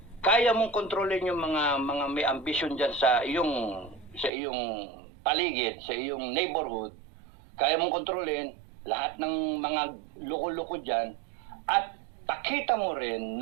kaya mong kontrolin yung mga may ambition diyan sa iyong paligid, sa iyong neighborhood, kaya mong kontrolin lahat ng mga loko-loko diyan at takita mo rin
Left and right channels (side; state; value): left; drops out; at 4.3 s